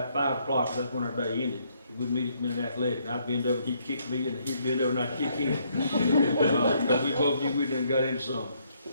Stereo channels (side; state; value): both; inverted; correlation -0.70